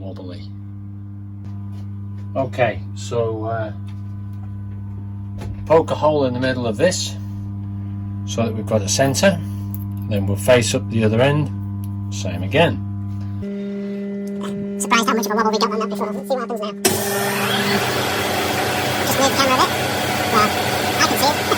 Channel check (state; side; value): identical; both; correlation 1.00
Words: Okay, so poke a hole in the middle of this so that we've got a centre. Then we'll face up the other end, same again. Surprised how much of a wobble we got on that before. Let's see what happens now. Just move the camera a bit. Well, I can see it.